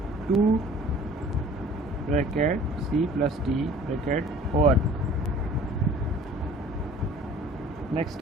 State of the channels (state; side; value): normal; both; correlation 0.49